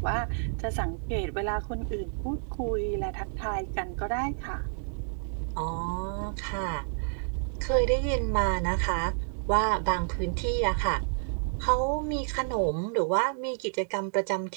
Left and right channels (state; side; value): silent; left; digital silence